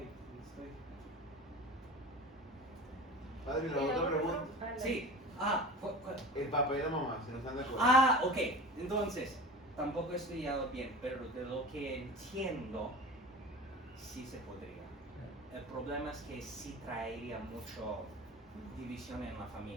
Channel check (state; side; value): normal; both; correlation 0.35